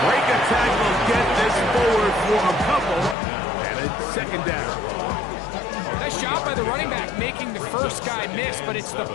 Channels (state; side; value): drops out; right; at 3.2 s